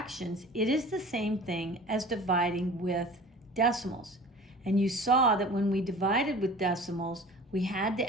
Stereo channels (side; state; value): both; normal; correlation 0.42